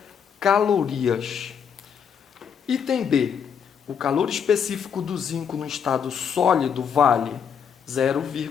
calorias. Item B. O calor específico do zinco no estado sólido vale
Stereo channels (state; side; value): quieter; right; 7.4 dB